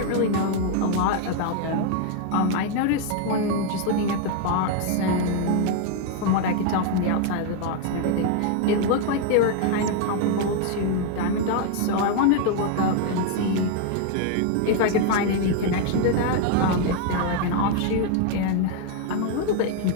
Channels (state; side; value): different; both; correlation 0.00